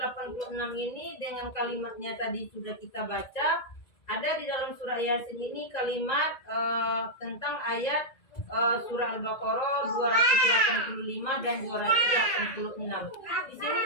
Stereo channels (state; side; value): late; right; 1.8 ms